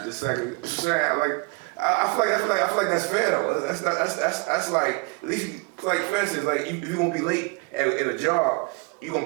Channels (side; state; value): left; quieter; 29.2 dB